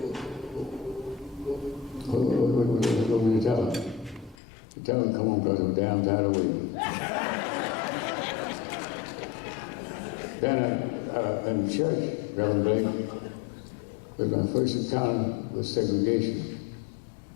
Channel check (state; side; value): drops out; right; at 4.4 s